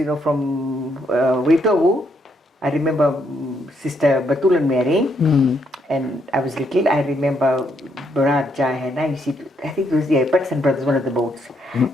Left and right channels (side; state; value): both; normal; correlation 0.75